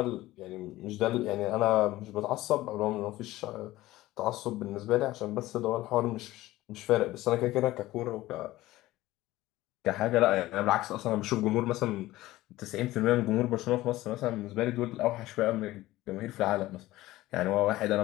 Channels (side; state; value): right; quieter; 17.0 dB